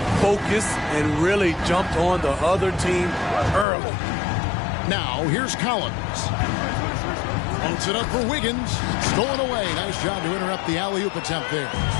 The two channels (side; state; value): right; drops out; at 3.7 s